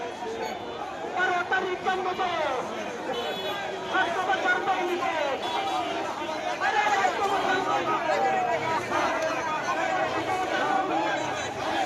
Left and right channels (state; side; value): identical; both; correlation 1.00